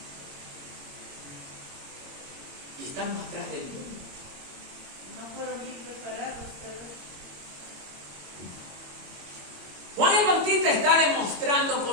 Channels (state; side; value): late; left; 22 ms